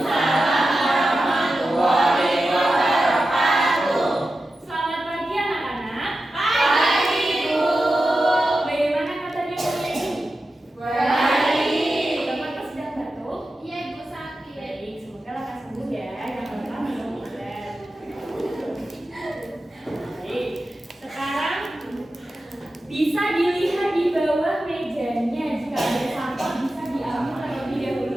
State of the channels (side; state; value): both; normal; correlation 0.92